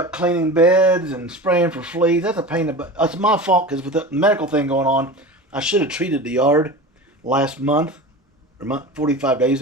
cleaning beds and spraying for fleas. That's a pain in the butt. It's my fault because with the medical thing going on, I should have treated the yard last month, or 45 days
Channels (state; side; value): normal; both; correlation 0.31